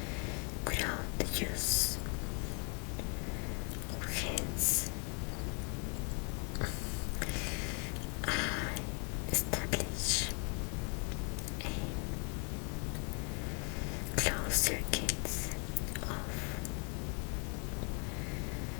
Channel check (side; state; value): right; quieter; 37.7 dB